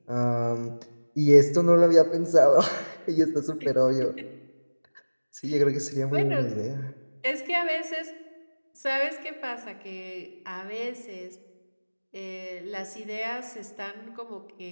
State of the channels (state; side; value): inverted; both; correlation -1.00